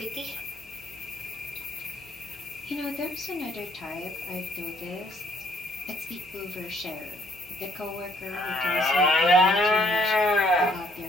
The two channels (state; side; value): normal; both; correlation 0.65